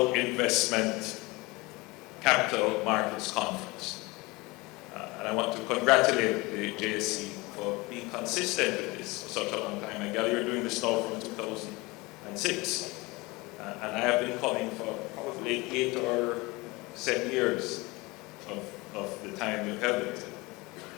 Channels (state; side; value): quieter; right; 23.6 dB